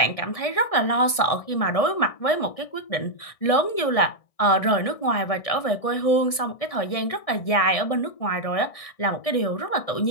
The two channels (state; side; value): late; right; 1.6 ms